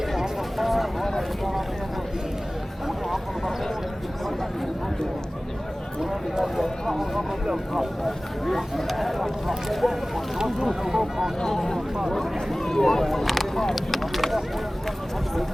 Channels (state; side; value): normal; both; correlation 0.98